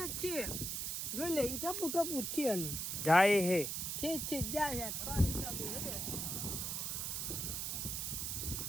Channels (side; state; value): right; noise; hiss, 2 dB below the sound